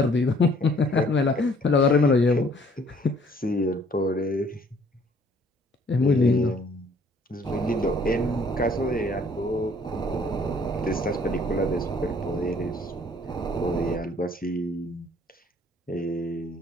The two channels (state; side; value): normal; both; correlation 0.59